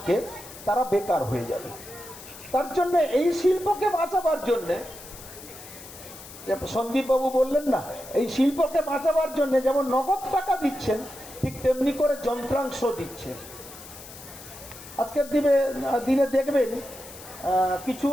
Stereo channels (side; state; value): left; noise; hiss, 16 dB below the sound